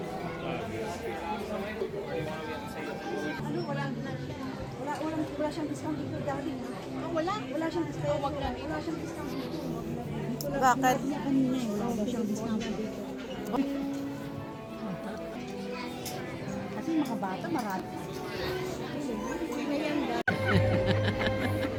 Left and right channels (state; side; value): identical; both; correlation 1.00